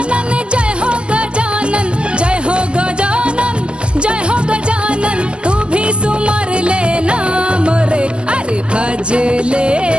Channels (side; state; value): left; late; 0.056 ms